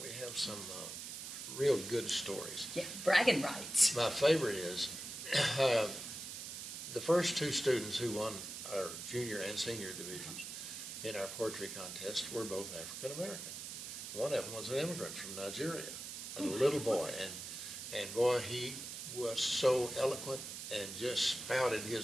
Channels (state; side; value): noise; right; hiss, 8 dB below the sound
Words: real good stories. Yeah, bragging rights. My favorite is the first 2 students who won our junior and senior divisions in our poetry contest were both African American. One of them was an immigrant from Nigeria, a little boy, and boy, he was so eloquent and just spouted